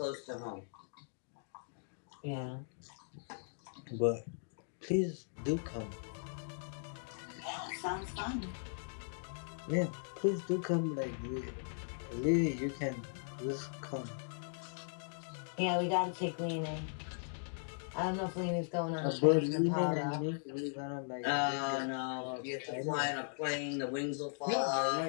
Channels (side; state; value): right; silent; digital silence